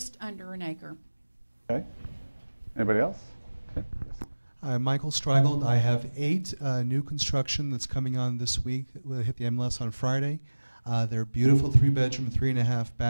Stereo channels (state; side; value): inverted; both; correlation -1.00